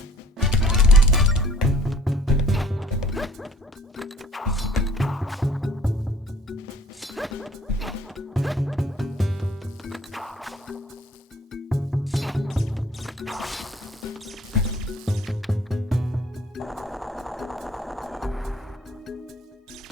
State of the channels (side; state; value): both; normal; correlation 0.54